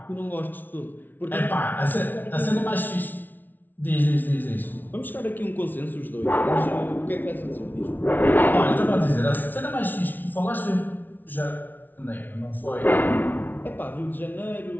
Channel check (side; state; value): right; late; 0.086 ms